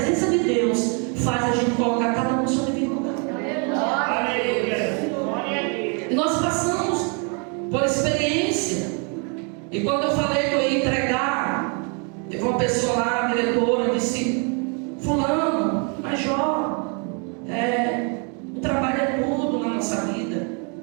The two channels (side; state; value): left; quieter; 36.9 dB